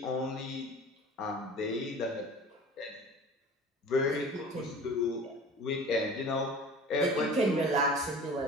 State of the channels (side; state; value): both; normal; correlation 0.41